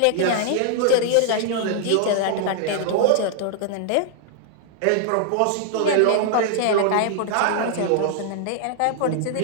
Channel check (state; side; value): different; both; correlation -0.01